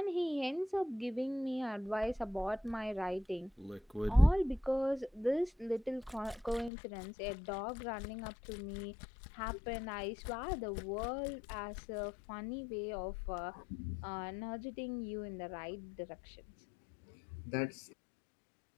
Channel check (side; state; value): right; drops out; at 6.7 s